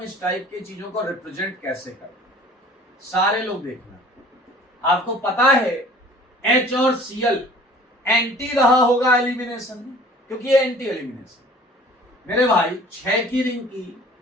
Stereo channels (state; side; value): normal; both; correlation 0.49